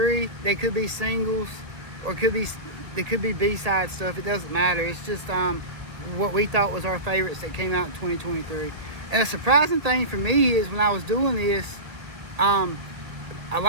They could be singles, or they could be B-side stuff. It doesn't matter. It's just what we thought was our favorites that came out in 2023. And a surprising thing for me is when I was doing this, a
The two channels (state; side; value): late; left; 1.8 ms